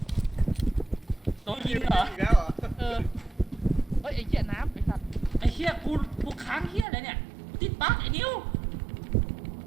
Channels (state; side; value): drops out; left; at 6.9 s